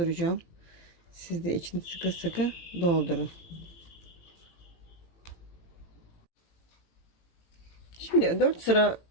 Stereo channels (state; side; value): late; right; 18 ms